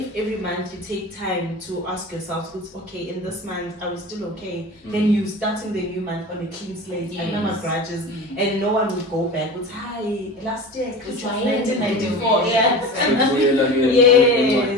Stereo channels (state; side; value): normal; both; correlation 0.32